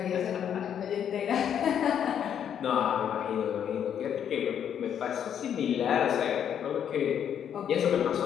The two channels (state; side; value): quieter; right; 9.0 dB